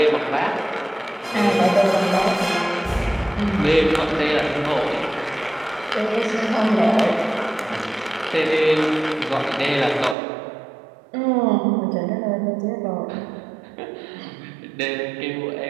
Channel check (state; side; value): drops out; left; at 10.2 s